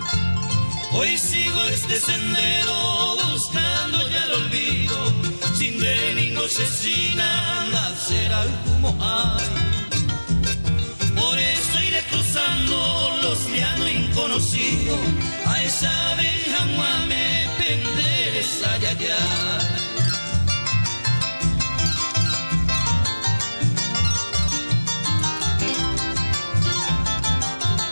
Hoy sigo este sendero buscando ya el olvido, sin de ni noche sin nada será como hay. Por eso iré cruzando los llanos inconocidos, a esa abeja me penderes allá.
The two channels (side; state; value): both; inverted; correlation -1.00